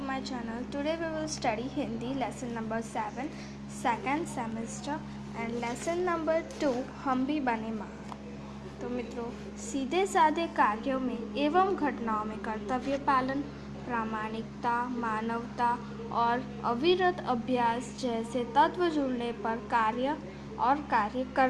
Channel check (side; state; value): both; identical; correlation 1.00